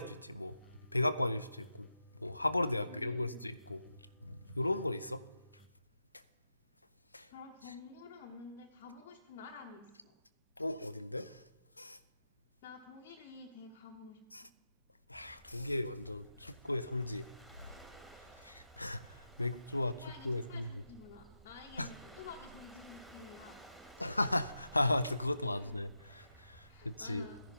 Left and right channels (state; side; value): inverted; both; correlation -0.89